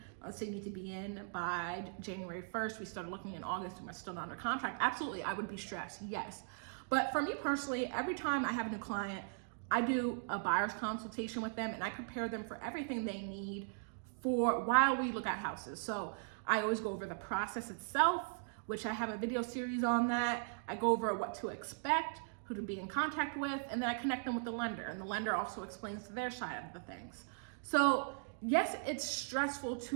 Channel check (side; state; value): left; silent; digital silence